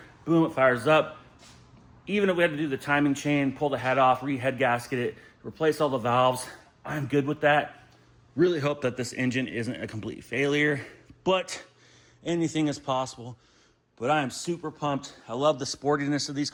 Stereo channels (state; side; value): identical; both; correlation 1.00